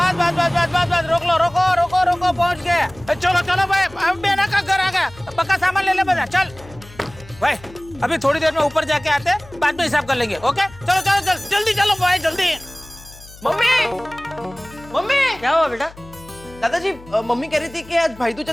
रोको पहुंच गए। चलो भाई अब बेना का घर आ गया। पक्का सामान ले बजा चल भाई। अभी थोड़ी देर में ऊपर जाके आते हैं, बाद में हिसाब कर लेंगे। ओके चलो जल्दी चलो भाई जल्दी। मम्मी क्या हुआ बेटा? दादाजी मम्मी कह रही थी कि आज भाई दूज है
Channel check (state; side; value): noise; left; hum, 20 dB below the sound